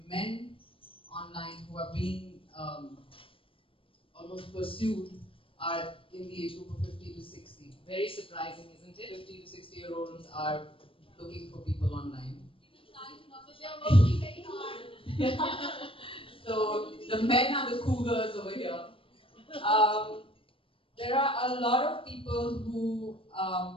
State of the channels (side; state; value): right; late; 0.26 ms